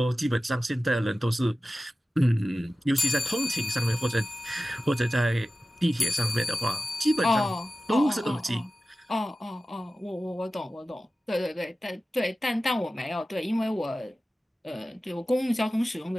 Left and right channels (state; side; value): normal; both; correlation 0.95